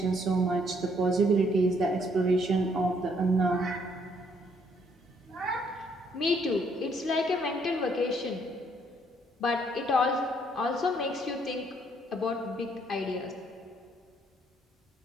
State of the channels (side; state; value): both; normal; correlation 0.67